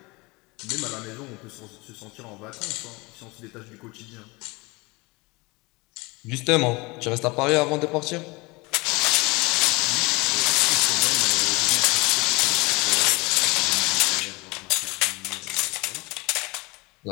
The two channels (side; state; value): right; quieter; 24.9 dB